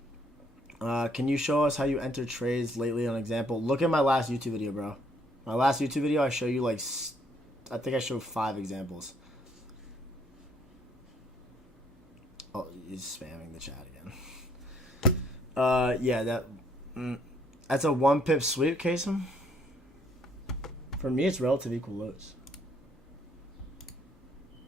Can you show us how you enter trades lately on example? Look at my last YouTube video, bro. My last YouTube video, I show you like, I think I showed 5 examples. Oh, he's spamming the chat again. Yeah, that's a 1 pip sweep, Kasem. For me, it's relative equal lows.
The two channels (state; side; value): normal; both; correlation 0.66